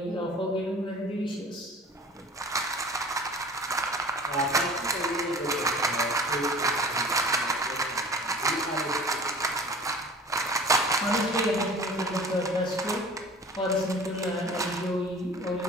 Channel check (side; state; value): both; normal; correlation 0.44